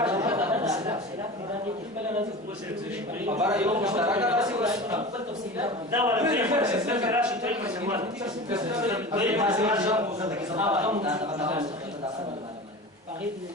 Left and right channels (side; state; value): both; normal; correlation 0.32